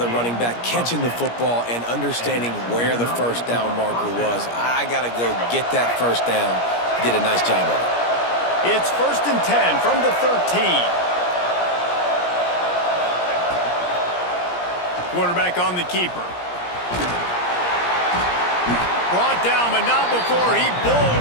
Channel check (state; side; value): late; right; 17 ms